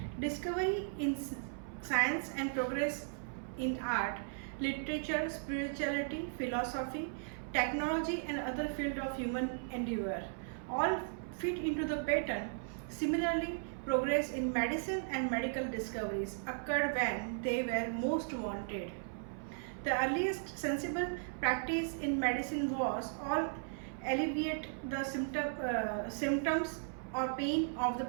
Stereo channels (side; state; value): left; silent; 53 dB below the other